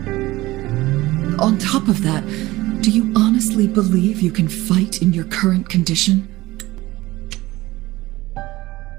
On top of that, do you honestly believe you can fight in your current condition?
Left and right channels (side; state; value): left; quieter; 18.5 dB